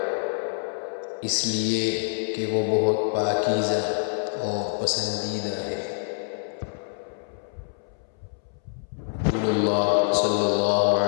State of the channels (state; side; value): silent; right; 61 dB below the other